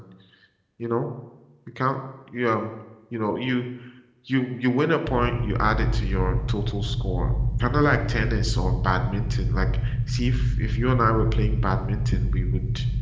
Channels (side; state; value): both; identical; correlation 1.00